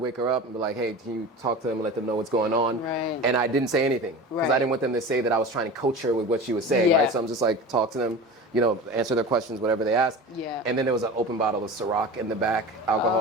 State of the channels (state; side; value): normal; both; correlation 0.33